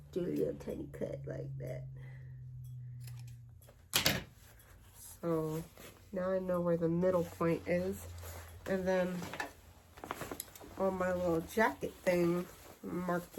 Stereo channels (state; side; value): identical; both; correlation 1.00